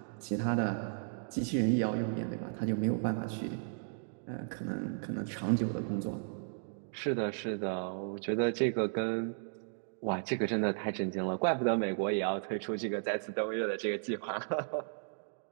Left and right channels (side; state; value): left; silent; digital silence